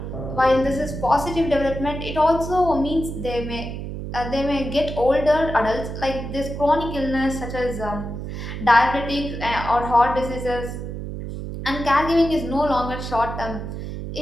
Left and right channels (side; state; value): right; noise; hum, 7 dB below the sound